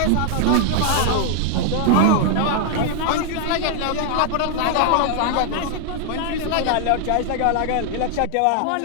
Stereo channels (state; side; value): different; both; correlation 0.00